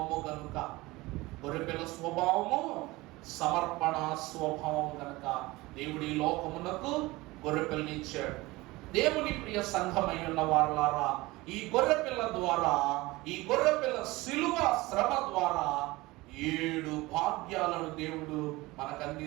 కనుక. గొర్రె పిల్ల స్వభావము సమర్పణ స్వభావం కనుక దేవుడి లోకమునకు గొర్రె పిల్లని ఇచ్చాడు. దేవుని ప్రియ సంఘమై ఉన్న వారలారా, ఈ గొర్రె పిల్ల ద్వారా, ఈ గొర్రె పిల్ల శిలువ శ్రమ ద్వారా 7 భాగ్యాలను దేవుడు మనకు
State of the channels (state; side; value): quieter; left; 20.9 dB